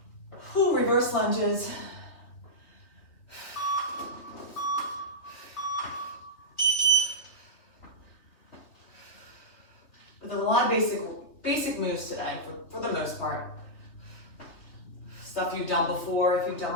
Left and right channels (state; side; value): late; right; 3.1 ms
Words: Whew, reverse lunges. There's a lot of basic moves today, for the most part. Stuff you've done before, if you've done